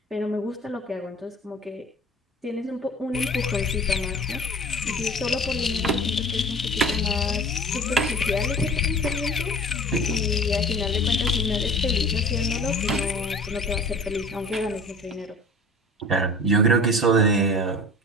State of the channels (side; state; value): both; normal; correlation 0.42